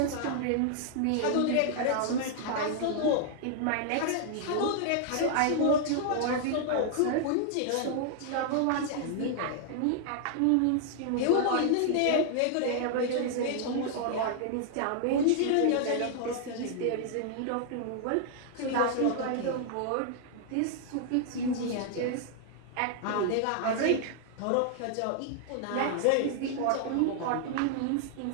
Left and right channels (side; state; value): both; different; correlation -0.01